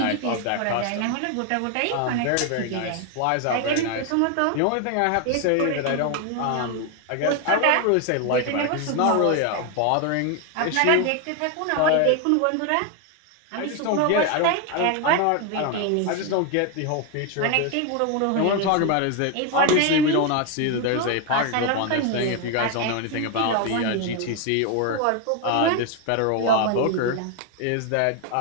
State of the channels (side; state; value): both; different; correlation 0.01